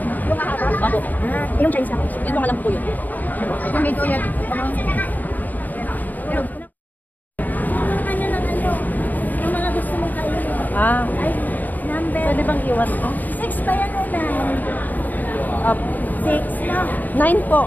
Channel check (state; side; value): late; right; 0.084 ms